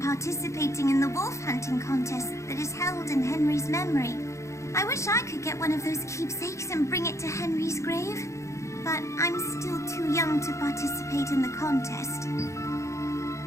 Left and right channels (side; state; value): right; late; 0.14 ms